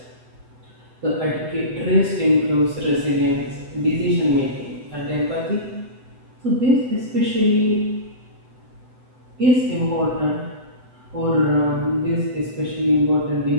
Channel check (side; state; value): left; late; 8.0 ms